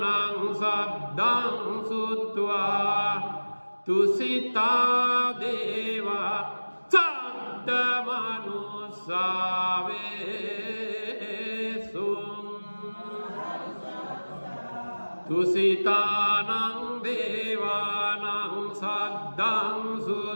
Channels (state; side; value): inverted; both; correlation -1.00